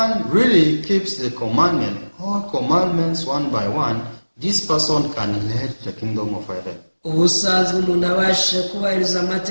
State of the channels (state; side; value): inverted; both; correlation -1.00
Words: really keeps the commandment, all commandments one by one, this person can inherit the kingdom of heaven. Ubusanzwe umuntu abashe kubahiriza